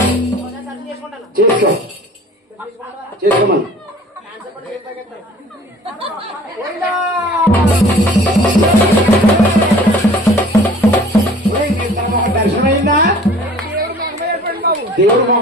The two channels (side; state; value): both; normal; correlation 0.49